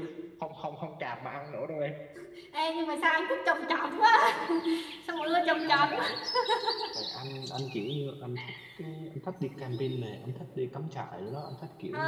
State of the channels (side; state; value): both; identical; correlation 1.00